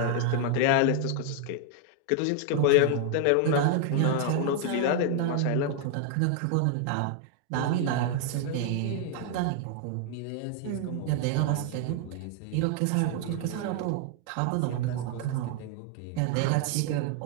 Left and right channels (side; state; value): both; different; correlation 0.00